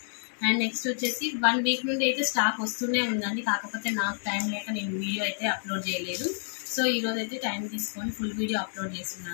అండ్ నెక్స్ట్ వచ్చేసి 1 వీక్ నుండి అయితే స్టాక్ వస్తూనే ఉందండి. కాకపోతే నాకు టైం లేక నేను వీడియో అయితే అప్లోడ్ చేయలేదు. సో ఈరోజు అయితే టైం తీసుకొని ఫుల్ వీడియో అప్లోడ్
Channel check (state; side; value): silent; right; digital silence